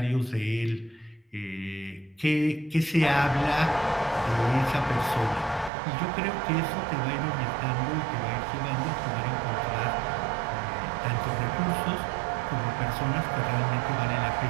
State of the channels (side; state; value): left; drops out; at 5.7 s